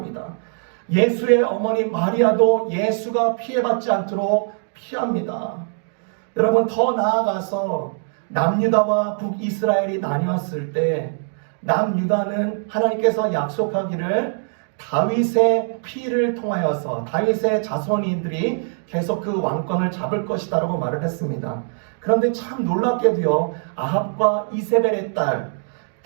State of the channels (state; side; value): silent; left; 64 dB below the other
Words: 예수의 어머니 마리아도 예수가 피해받지 않도록 피합니다. 여러분, 더 나아가서 남유다와 북이스라엘이 나뉘었을 때 남유다는 하나님께서 약속하기를 다윗의 피를 통하여서 다윗의 자손인들이 계속 그 왕권을 잡을 것이다 라고 말을 했습니다. 그런데 참 놀랍게도요, 아합과 이세벨의 딸